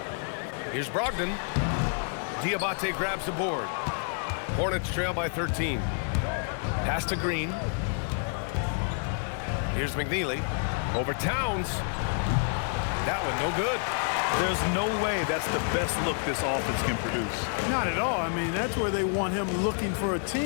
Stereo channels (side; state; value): right; silent; 55 dB below the other